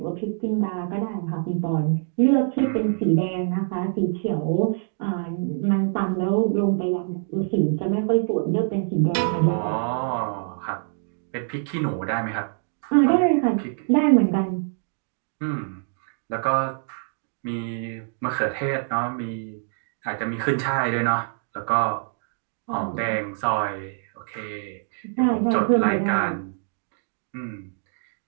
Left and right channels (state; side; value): silent; left; digital silence